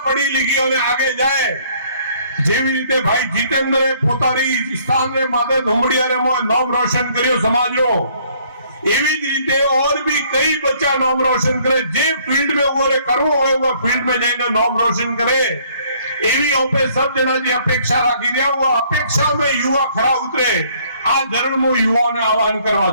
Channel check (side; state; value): both; inverted; correlation -0.62